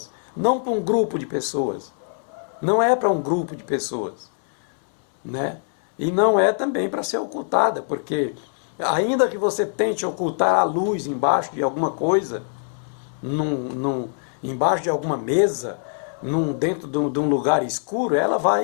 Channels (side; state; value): right; silent; 63 dB below the other